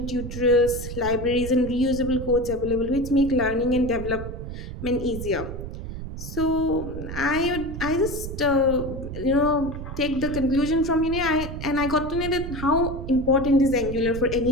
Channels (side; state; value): right; noise; rumble, 8 dB below the sound